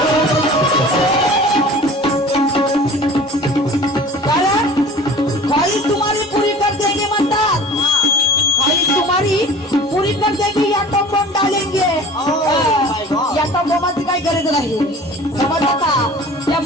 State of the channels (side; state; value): both; normal; correlation 0.42